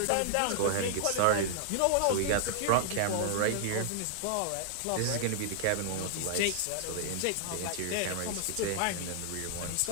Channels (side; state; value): both; different; correlation -0.01